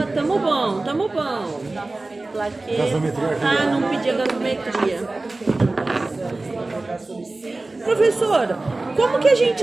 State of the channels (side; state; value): left; quieter; 3.1 dB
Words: tamo bom. Plaqueta. Ah, não pedi a gasometria. Professora, como que a